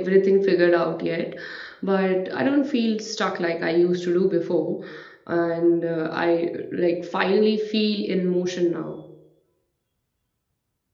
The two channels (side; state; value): both; identical; correlation 1.00